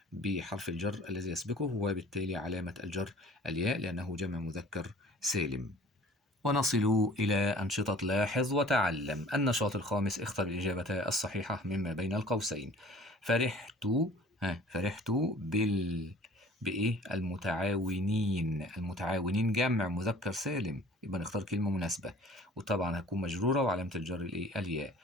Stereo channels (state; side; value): normal; both; correlation 0.48